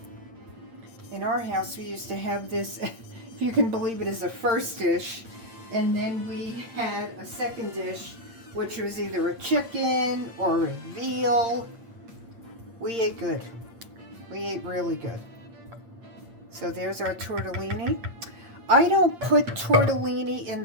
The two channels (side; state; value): left; late; 8.7 ms